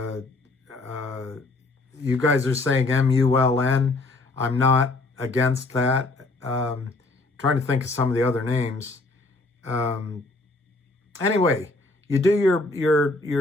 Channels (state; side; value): quieter; right; 3.2 dB